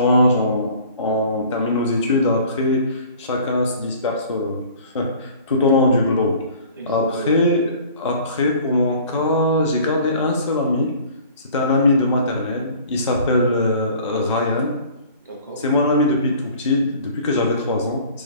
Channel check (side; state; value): both; inverted; correlation -0.48